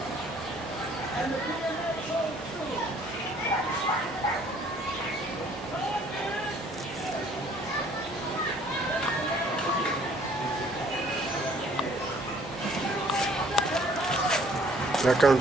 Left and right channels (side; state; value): both; normal; correlation 0.58